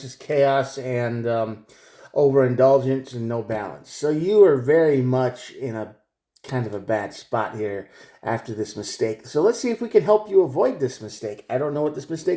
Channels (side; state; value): both; identical; correlation 1.00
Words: is chaos and overindulgence and no balance. So you are very much in a kind of a bad spot here after this mistake. So let's see if we can help you avoid this mistake. I don't know what this